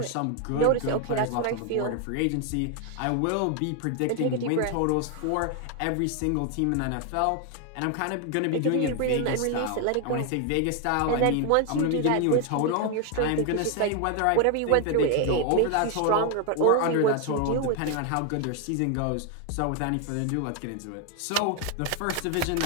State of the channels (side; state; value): both; different; correlation 0.01